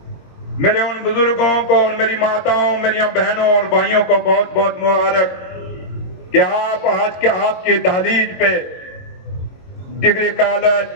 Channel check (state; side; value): late; right; 22 ms